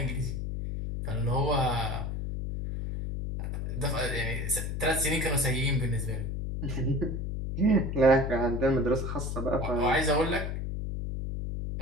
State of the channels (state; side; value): noise; left; hum, 3 dB below the sound